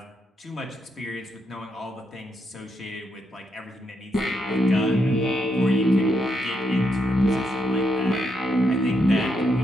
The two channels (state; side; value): normal; both; correlation 0.79